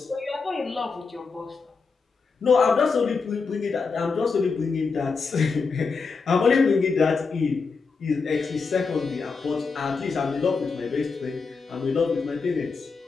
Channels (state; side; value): quieter; right; 4.8 dB